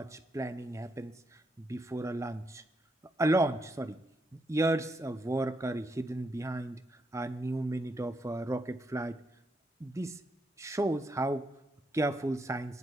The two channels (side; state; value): both; normal; correlation 0.79